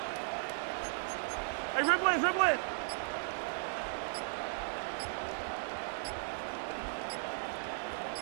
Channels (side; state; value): left; silent; digital silence